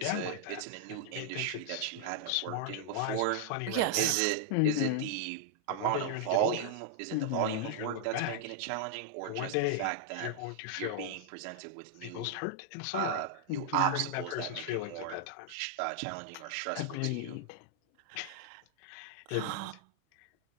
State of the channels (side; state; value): both; different; correlation -0.01